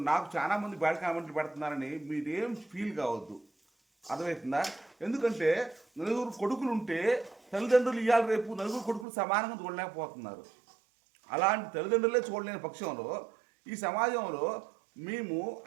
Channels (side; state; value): left; drops out; at 9.1 s